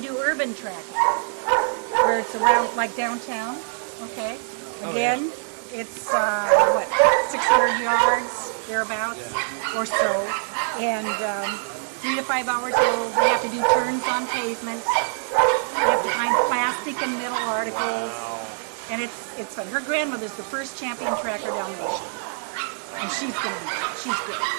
urban tracking, where it's around like downtown, okay? Again, it's 600 yards, thereabouts, or so. And 3 to 5 hours old, we have to do turns on pavement. We have to find plastic and metal articles. Wow. And it's fun. Her grandmother's the first champion tracker Dalmatian. And she's good.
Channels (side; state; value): left; silent; digital silence